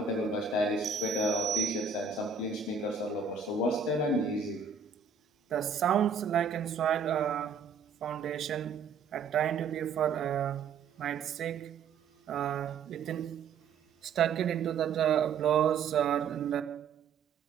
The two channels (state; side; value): quieter; left; 5.6 dB